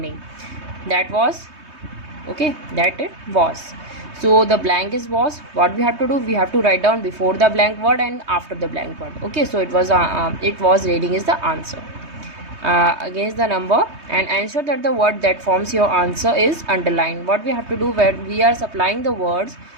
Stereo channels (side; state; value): left; late; 3.2 ms